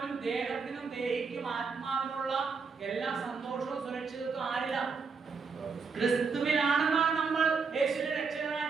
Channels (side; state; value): left; quieter; 5.1 dB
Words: ദേഹത്തിനും ദേഹിക്കും ആത്മാവിനുള്ള എല്ലാ സന്തോഷവും സുരക്ഷിതത്വം ആരില്ല? ക്രിസ്തുവിലാണെന്നാണ് നമ്മൾ യേശുവിനെ